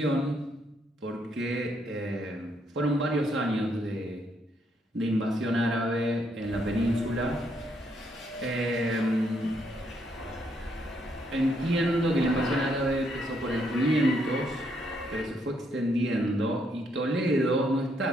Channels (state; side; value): normal; both; correlation 0.74